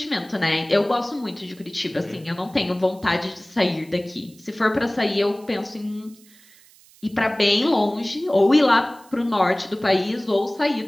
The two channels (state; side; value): noise; right; hiss, 26 dB below the sound